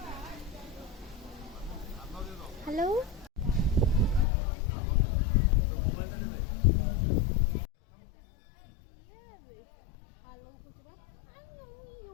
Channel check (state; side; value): drops out; right; at 4.2 s